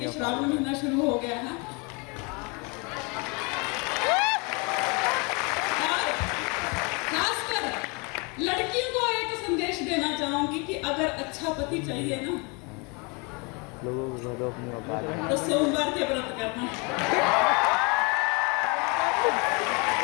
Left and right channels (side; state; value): right; quieter; 30.8 dB